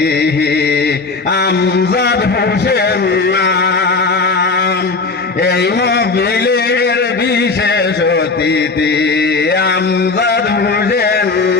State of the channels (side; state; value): right; quieter; 4.1 dB